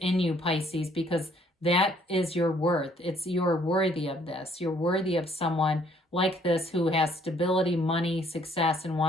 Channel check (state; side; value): normal; both; correlation 0.63